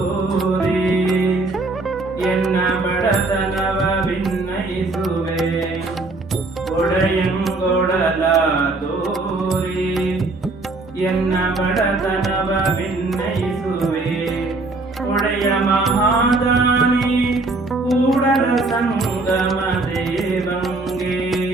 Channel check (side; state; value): left; quieter; 3.3 dB